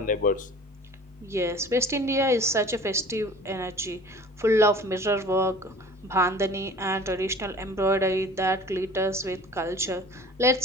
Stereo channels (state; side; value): normal; both; correlation 0.44